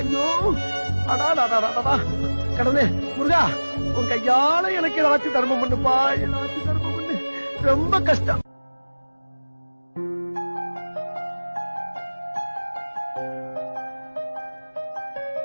ஐயோ அடா கடவுளே முருகா, உன் கையால எனக்கு ஏதாச்சும் தர்மம் பண்ணுப்பா, ஏதாச்சும் தர்மம் பண்ணு. ரொம்ப கஷ்டம்.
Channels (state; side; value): inverted; both; correlation -1.00